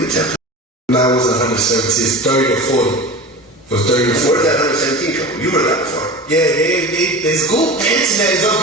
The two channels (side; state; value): both; normal; correlation 0.32